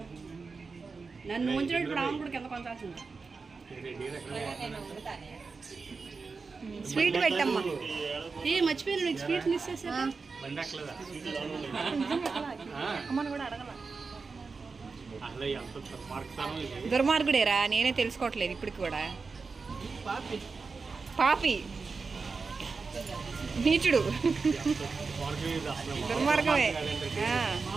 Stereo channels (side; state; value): left; quieter; 4.6 dB